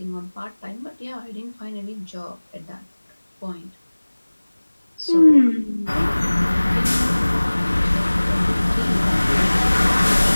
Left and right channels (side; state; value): both; inverted; correlation -1.00